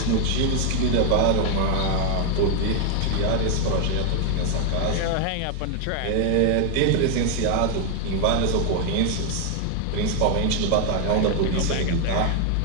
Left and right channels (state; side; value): different; both; correlation 0.01